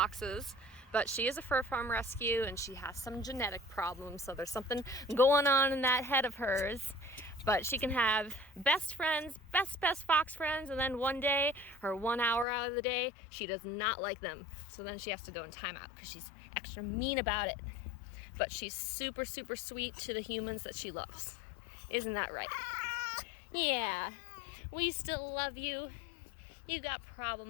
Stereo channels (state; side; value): drops out; right; at 12.5 s